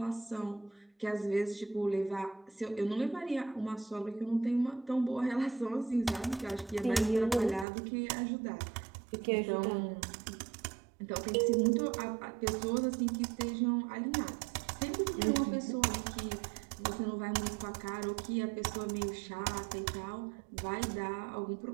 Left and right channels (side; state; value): left; drops out; at 7.7 s